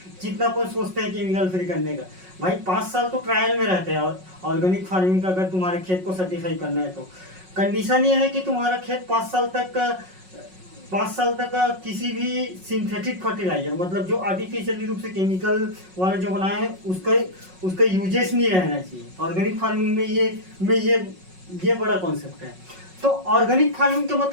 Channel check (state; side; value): late; left; 5.4 ms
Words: जितना अपन सोचते हैं केमिकल फ्री करने का। भाई 5 साल तो ट्रायल में रहते हैं। और ऑर्गेनिक फार्मिंग का अगर तुम्हारे खेत को सर्टिफाई करना है तो कंडीशन ये है कि तुम्हारा खेत 5 साल तक किसी भी सिंथेटिक फर्टिलाइजर मतलब जो आर्टिफिशियली रूप से केमिकल वाला जो बनाए हैं उसका यूजेस नहीं रहना चाहिए। ऑर्गेनिक फार्मिंग में ये बड़ा कॉन्सेप्ट है। तो ऑर्गेनिक फार्मिंग का